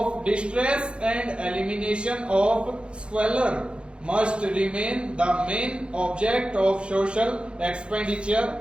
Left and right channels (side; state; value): left; late; 0.056 ms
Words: distress and elimination of squalor must remain the main object of social